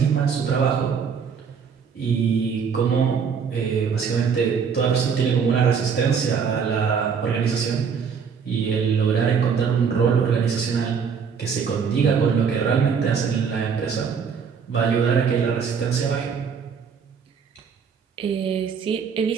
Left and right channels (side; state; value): left; quieter; 6.4 dB